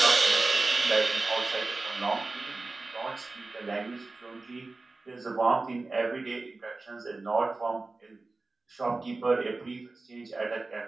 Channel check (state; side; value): quieter; left; 3.4 dB